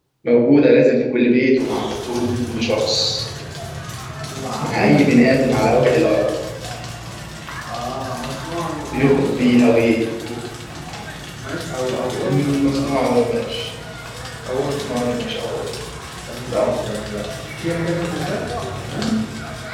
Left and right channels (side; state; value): both; identical; correlation 1.00